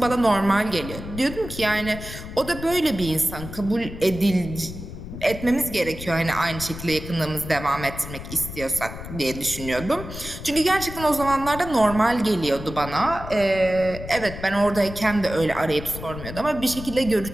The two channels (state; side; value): noise; left; rumble, 11 dB below the sound